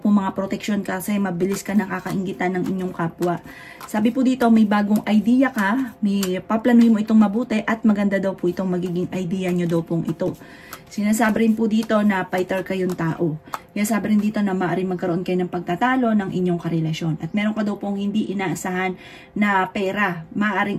mga proteksyon kasi mabilis ka nakakainggitan ng inyong kapwa. Sabi po dito, may bagong idea ka, may paplanuhin mo itong mabuti at maganda daw po itong magiging idea nyo daw pong ito. Sinasabi rin po dito na fighter kayong tao. Kaya sabi rin dito na maaaring magkaroon kayo ng pagtatalo ng inyong karelasyon. At meron ka daw pong hindi inaasahan na pera.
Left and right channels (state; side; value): identical; both; correlation 1.00